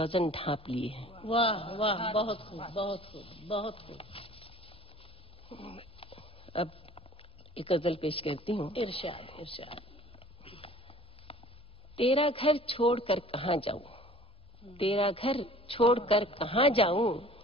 ढांप लिए हैं। वाह वाह, बहुत खूब, बहुत खूब, बहुत खूब। अब एक गजल पेश करती हूँ। इरशाद इरशाद। तेरा घर छोड़कर कहाँ जाऊं, तेरा घर छोड़कर कहाँ जाऊं,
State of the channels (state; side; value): normal; both; correlation 0.48